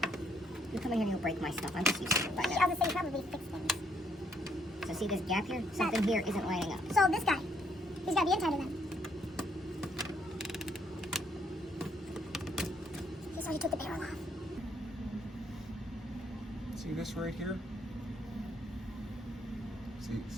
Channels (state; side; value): normal; both; correlation 0.70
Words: You come in here and you'll break my stuff. I'm just used to it by I now. was gonna say probably fix things. So see this gap here? Something here isn't lining up. So this guy, he's gotta be inside of them. So he took the barrel off. See this right here?